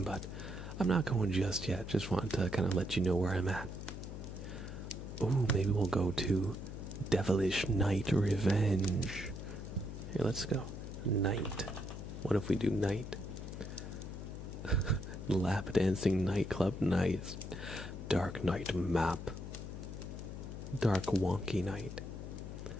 but I'm not going just yet. Just wanted to kind of let you know where I'm at. Ooh, maybe we'll go to Devilish Night Revenge. Here, let's go. Night. What if we do night? Lap dancing nightclub, nice. Dark night map. Dark wonky night.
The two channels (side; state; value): left; noise; hum, 8 dB below the sound